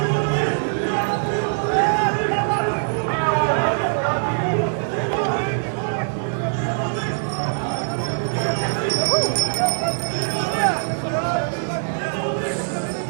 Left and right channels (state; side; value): silent; left; digital silence